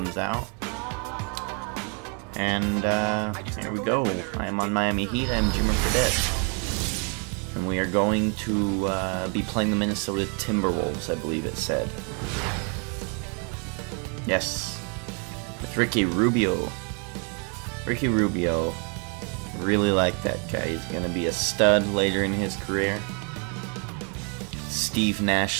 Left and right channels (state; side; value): quieter; left; 37.2 dB